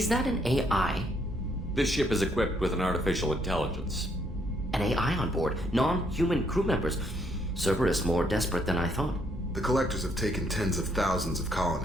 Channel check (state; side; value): normal; both; correlation 0.71